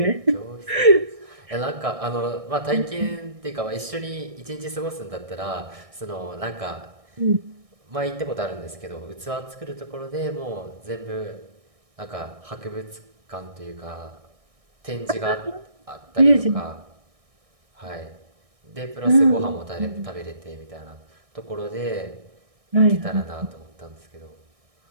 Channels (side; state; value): left; late; 1.6 ms